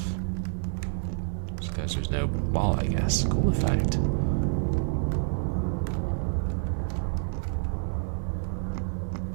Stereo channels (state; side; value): silent; left; 59 dB below the other